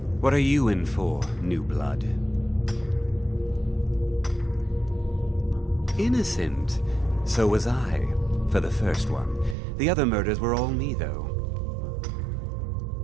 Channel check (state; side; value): drops out; left; at 9.6 s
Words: What are you in for, new blood? Innocent. So was I, for the first one. The other murders were all me, though.